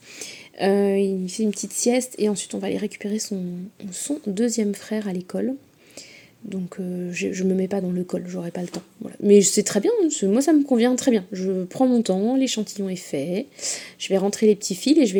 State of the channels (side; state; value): both; identical; correlation 1.00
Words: Il fait une petite sieste et ensuite on va aller récupérer son deuxième frère à l'école. Donc je me mets pas dans le col, j'aurai pas le temps. Voilà. Mais c'est très bien, moi ça me convient très bien. Je prends mon temps, l'échantillon est fait. Je vais rentrer les petits fils et je vais